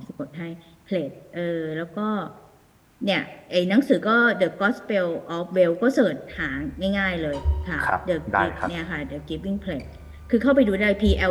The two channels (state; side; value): identical; both; correlation 1.00